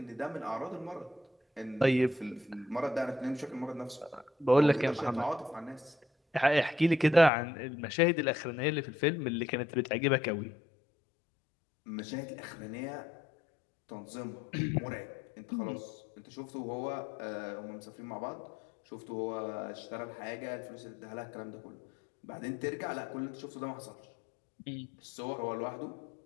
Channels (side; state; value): right; drops out; at 7.3 s